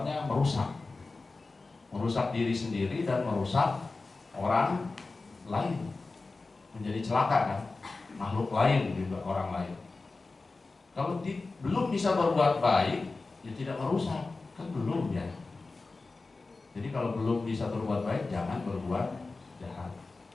merusak diri sendiri dan merusak orang lain, menjadi celaka kan, makhluk lain juga, orang lain. Kalau belum bisa berbuat baik, ya tidak merusak, kan belum ya. Jadi kalau belum bisa berbuat baik, jangan berbuat jahat,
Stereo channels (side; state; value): right; quieter; 3.7 dB